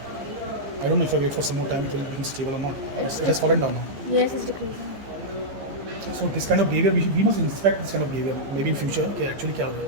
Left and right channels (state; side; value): late; left; 15 ms